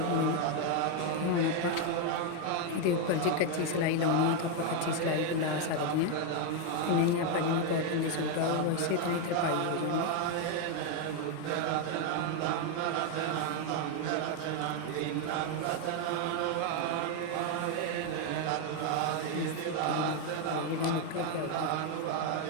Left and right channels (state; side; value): different; both; correlation 0.01